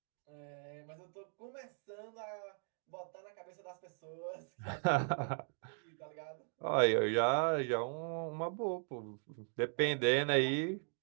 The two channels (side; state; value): left; silent; 52 dB below the other